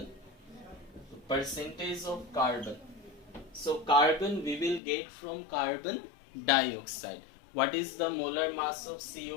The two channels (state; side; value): drops out; right; at 4.8 s